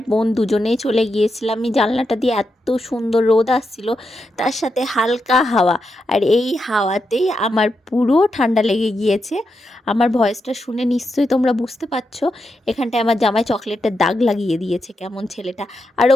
বোন দুজনেই চলে গিয়েছিলাম। আমি জানলাটা দিয়ে এত সুন্দর রোদ আসছিল, তার সাথে হালকা হাওয়া, আর এই হাওয়াতেই আমার পুরো ঠান্ডা লেগে গিয়েছে। আমার ভয়েসটা শুনে নিশ্চয়ই তোমরা বুঝতে পারছো। এখানটায় আমার জামাই চকলেটের দাগ লাগিয়ে দিয়েছে কেমন ছেলেটা। আর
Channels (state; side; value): normal; both; correlation 0.85